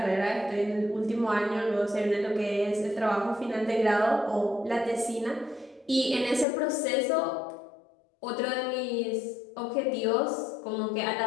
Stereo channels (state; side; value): drops out; right; at 6.5 s